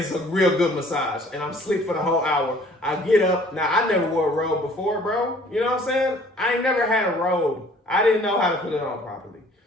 a real good massage. And I'm asleep for the whole hour. I get up. Now, I never wore a robe before, bro. You know what I'm saying? I ain't never had a robe. I didn't know how to put it on properly.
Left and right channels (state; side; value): normal; both; correlation 0.55